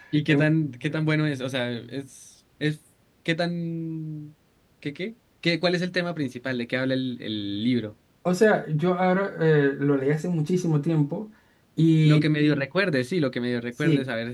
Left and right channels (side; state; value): both; identical; correlation 1.00